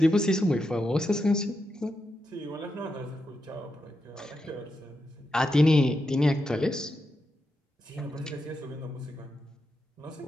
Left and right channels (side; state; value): both; normal; correlation 0.86